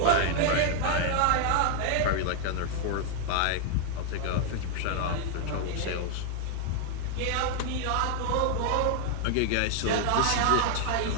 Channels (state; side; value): different; both; correlation 0.00